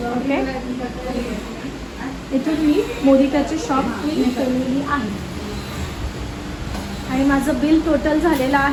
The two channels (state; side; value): identical; both; correlation 1.00